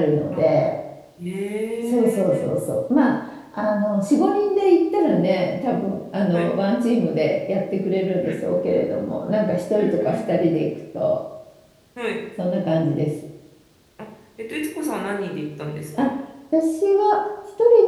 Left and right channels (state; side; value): identical; both; correlation 1.00